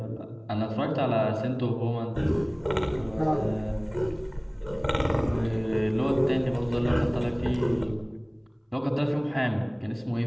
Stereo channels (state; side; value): identical; both; correlation 1.00